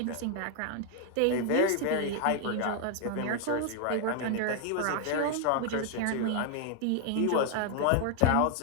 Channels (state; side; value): different; both; correlation 0.00